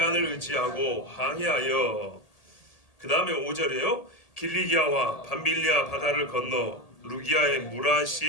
의지하고 항해하여, 그 다음에 5절이에요. 길리기아와 밤빌리아 바다를 건너 루기아의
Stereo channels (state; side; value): late; right; 1.8 ms